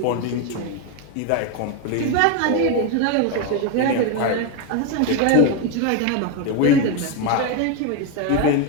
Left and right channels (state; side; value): different; both; correlation 0.02